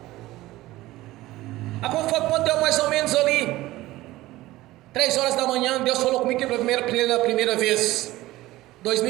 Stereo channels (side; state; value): left; quieter; 17.4 dB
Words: Quando deu mais ou menos ali 3 horas da manhã, Deus falou comigo pela primeira vez,